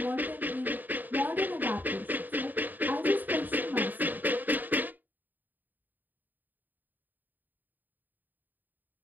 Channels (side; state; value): left; late; 0.087 ms